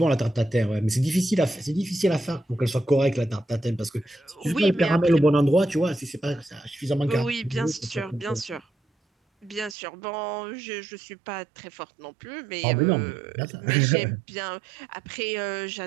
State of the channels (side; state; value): left; drops out; at 9.8 s